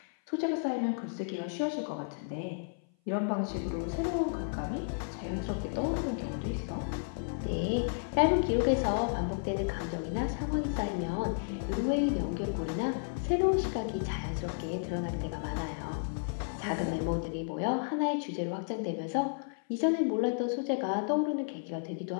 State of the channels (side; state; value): right; silent; 55 dB below the other